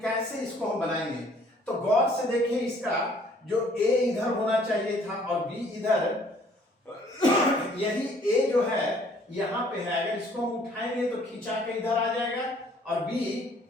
कैसे इसको हम बनाएंगे। तो गौर से देखें, इसका जो A इधर होना चाहिए था और B इधर, यही A जो है यहां पे है, अगर इसको हम उठाएंगे तो खींचा के इधर आ जाएगा और B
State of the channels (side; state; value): both; normal; correlation 0.59